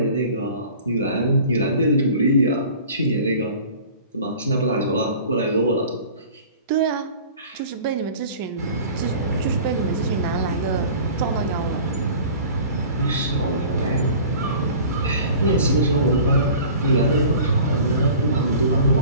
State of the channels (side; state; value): both; inverted; correlation -0.43